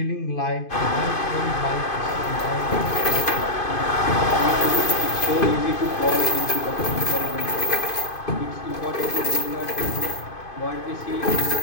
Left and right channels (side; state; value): right; late; 2.5 ms